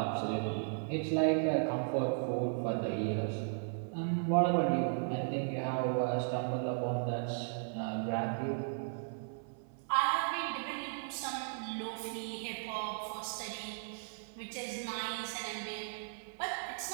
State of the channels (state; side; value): silent; left; 54 dB below the other